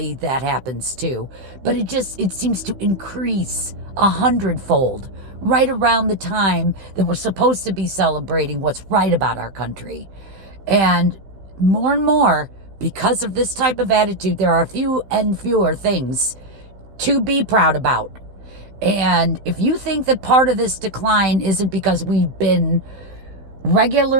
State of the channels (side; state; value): left; late; 15 ms